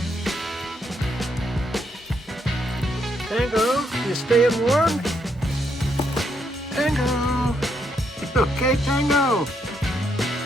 Tango, you staying warm? Tango! Okay, Tango?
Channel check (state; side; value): normal; both; correlation 0.76